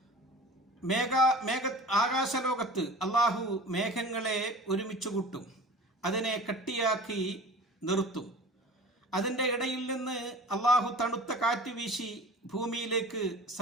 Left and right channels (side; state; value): both; normal; correlation 0.39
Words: ആകാശലോകത്ത് അള്ളാഹു മേഘങ്ങളെ ഒരുമിച്ച് കൂട്ടും, അതിനെ കട്ടിയാക്കി നിർത്തും. അതിൻ്റെ ഇടയിൽ നിന്ന് അള്ളാഹു തണുത്ത കാറ്റ് വീശി ഭൂമിയിലേക്ക്